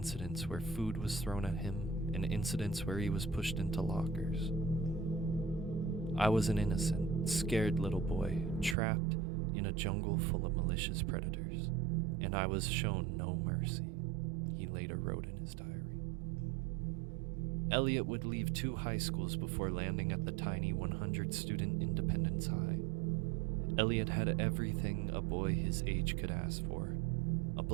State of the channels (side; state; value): left; drops out; at 8.8 s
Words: where food was thrown at him and incidents where he was pushed into lockers. I was an innocent, scared little boy trapped in a jungle full of malicious predators, and I was shown no mercy, he later wrote in his diary. Elliot would leave 2 high schools before landing at the tiny 100-student Independence High. Elliot had everything a boy his age could ask for: a